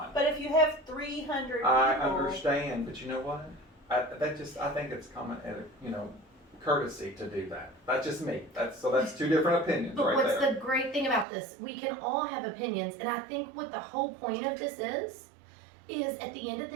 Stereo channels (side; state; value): left; drops out; at 11.2 s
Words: But if you have 300 people. I understand, but you know what? I think it's common, courtesy to do that. That's just me. That's two different opinions But right what's there. the great thing about this? We can all have opinions, and I think what the whole point of this is at the end of